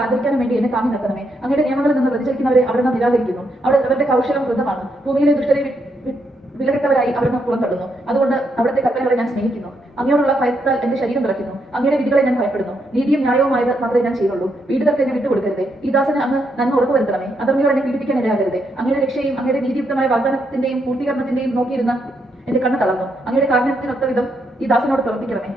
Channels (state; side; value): normal; both; correlation 0.78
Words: ആദരിക്കാനും വേണ്ടി എന്നെ താങ്ങി നിർത്തണമേ. അങ്ങയുടെ നിയമങ്ങളിൽ നിന്ന് വ്യതിചലിക്കുന്നവരെ അവിടുന്ന് നിരാകരിക്കുന്നു. അവരുടെ കൗശലം വൃദ്ധമാണ്. ഭൂമിയിലെ ദുഷ്ടരെ വിലകെട്ടവരായി അവിടുന്ന് പുറന്തള്ളുന്നു. അതുകൊണ്ട് അവിടുത്തെ കൽപ്പനകളെ ഞാൻ സ്നേഹിക്കുന്നു. അങ്ങയോടുള്ള ഭയത്താൽ എന്റെ ശരീരം വിറയ്ക്കുന്നു. അങ്ങയുടെ വിധികളെ ഞാൻ ഭയപ്പെടുന്നു. നീതിയും ന്യായവുമായത് മാത്രമേ ഞാൻ ചെയ്യുള്ളൂ. പീഡിതർക്ക് എന്നെ വിട്ടുകൊടുക്കരുതേ. ഈ ദാസന് അങ്ങ് നന്മ ഉറപ്പുവരുത്തണമേ. അധർമ്മികൾ എന്നെ പീഡിപ്പിക്കാൻ ഇടയാകരുതേ. അങ്ങയുടെ രക്ഷയും അങ്ങയുടെ നീതിയുക്തമായ വാഗ്ദാനത്തിന്റെയും പൂർത്തീകരണത്തിന്റെയും നോക്കിയിരുന്ന എന്റെ കണ്ണ് തളർന്നു. അങ്ങയുടെ കാരുണ്യത്തിനൊത്ത വിധം ഈ ദാസനോട് പ്രവർത്തിക്കണമേ.